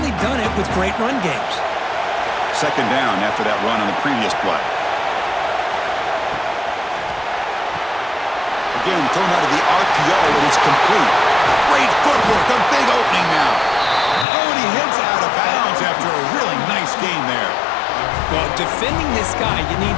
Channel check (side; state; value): right; drops out; at 14.2 s